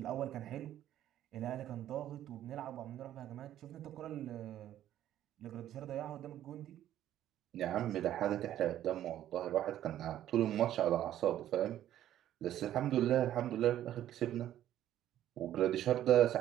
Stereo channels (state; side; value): quieter; left; 12.1 dB